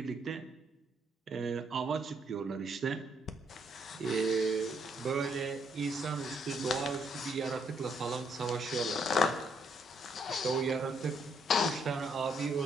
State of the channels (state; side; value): normal; both; correlation 0.71